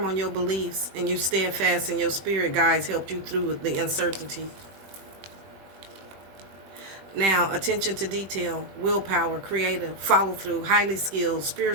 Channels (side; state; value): left; late; 21 ms